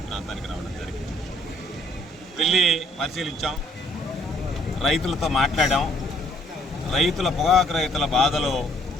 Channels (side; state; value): both; normal; correlation 0.63